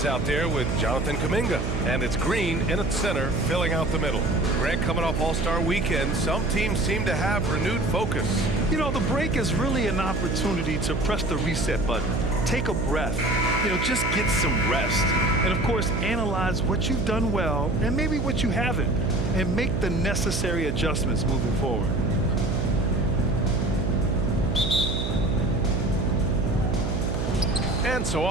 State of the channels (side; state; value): right; noise; hum, 1 dB below the sound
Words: out there with Jonathan Kuminga. And it's Green in at center, filling out the middle. Grant, coming off All-Star Weekend, some teams seem to have renewed focus. You know, the break is really an opportunity to press the reset button. Take a breath. Just get some rest. And, of course, analyze what you've done well and maybe what you haven't, and make the necessary adjustments moving forward. And so